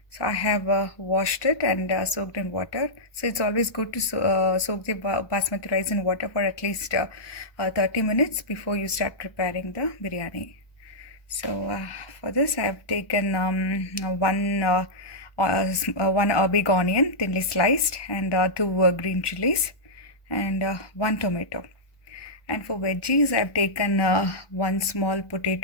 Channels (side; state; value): right; late; 1.2 ms